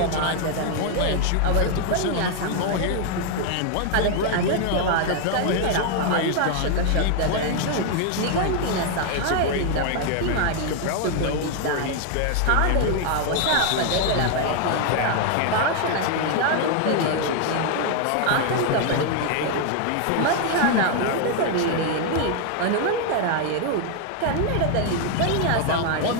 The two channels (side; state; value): both; different; correlation 0.00